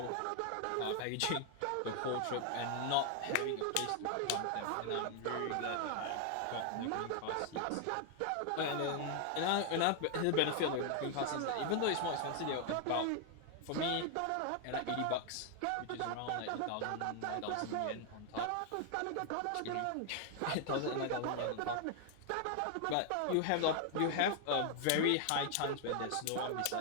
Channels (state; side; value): different; both; correlation 0.00